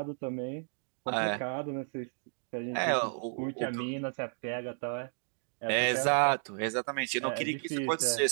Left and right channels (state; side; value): silent; left; digital silence